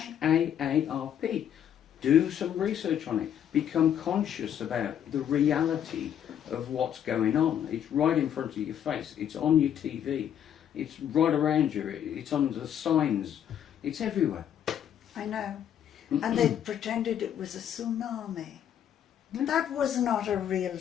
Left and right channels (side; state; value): right; quieter; 9.7 dB